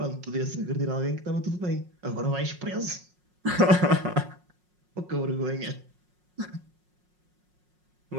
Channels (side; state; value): left; late; 5.5 ms